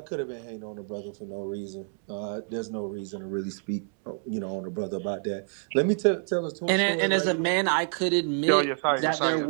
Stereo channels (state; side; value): silent; left; digital silence